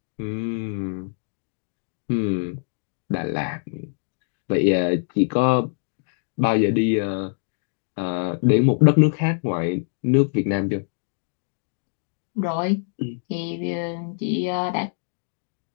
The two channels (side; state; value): right; silent; digital silence